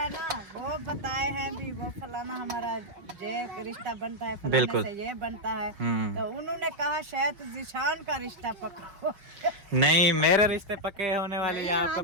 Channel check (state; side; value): late; left; 5.5 ms